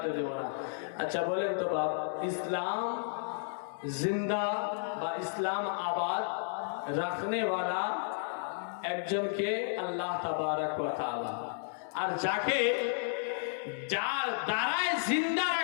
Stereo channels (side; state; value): right; silent; digital silence